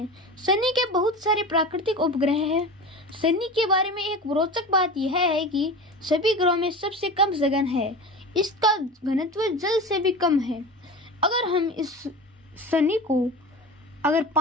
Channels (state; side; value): normal; both; correlation 0.31